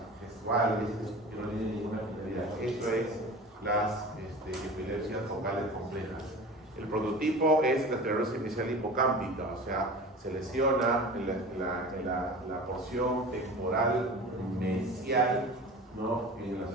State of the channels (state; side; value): normal; both; correlation 0.36